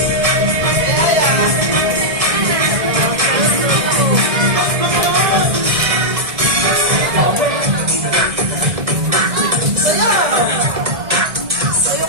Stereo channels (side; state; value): left; late; 1.6 ms